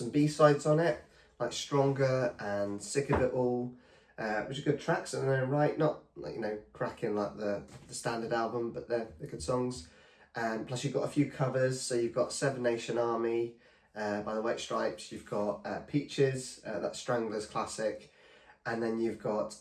B-sides on it, like Stronger and Sick of It All, which are good tracks in their own right, not like, you know, cracking like the standard album, but they're good songs. Plus you've got a few covers, so you've got Seven Nation Army by the White Stripes, you've got Peaches, that's Strangler's classic, and then you've got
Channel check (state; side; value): identical; both; correlation 1.00